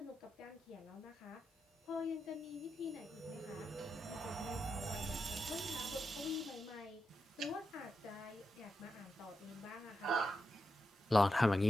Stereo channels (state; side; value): normal; both; correlation 0.87